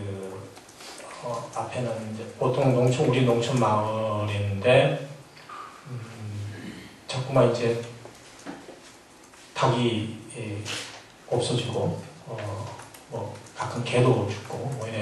앞에는 이제 보통 우리 농촌 마을인데 자꾸만 이제 닭이 없어지고 뭐 가끔 개도 죽고 뭐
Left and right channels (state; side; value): identical; both; correlation 1.00